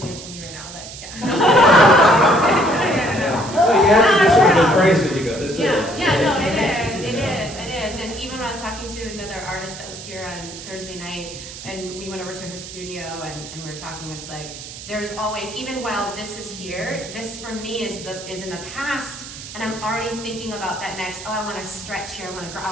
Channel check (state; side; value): noise; right; hiss, 12 dB below the sound